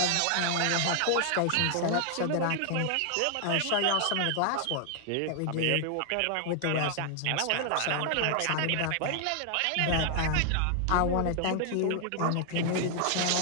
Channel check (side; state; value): both; different; correlation 0.00